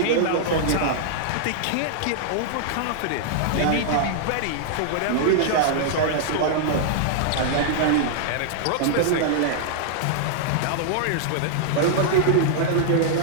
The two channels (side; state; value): both; different; correlation -0.01